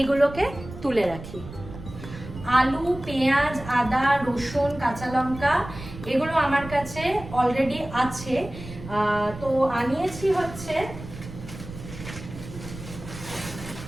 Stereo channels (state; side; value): noise; right; rumble, 13 dB below the sound